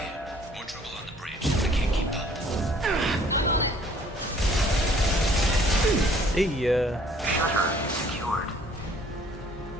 more trouble on the bridge. I can't keep up. Hey, Shutter secured.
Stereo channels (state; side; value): normal; both; correlation 0.57